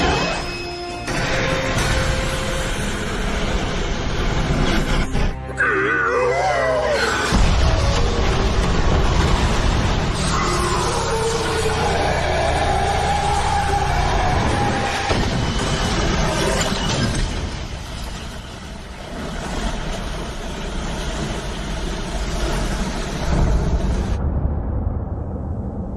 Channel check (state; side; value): identical; both; correlation 1.00